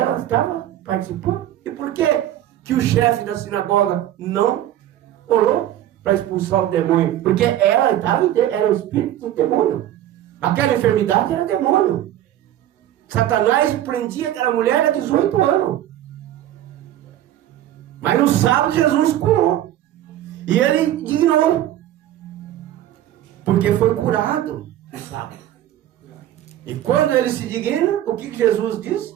estava participando. E por que o chefe da sinagoga não orou para expulsar o demônio? Porque ela era o espírito do demônio. Aquela enfermidade era demônio. Satanás prendia aquela mulher há 18 anos. Mas no sábado Jesus curou. E ele dignou. Porque foi curado no sábado. E quando ele se digna, o que Jesus disse?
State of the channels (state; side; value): quieter; left; 12.5 dB